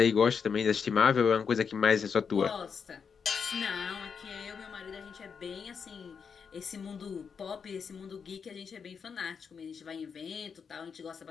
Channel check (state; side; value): quieter; right; 6.3 dB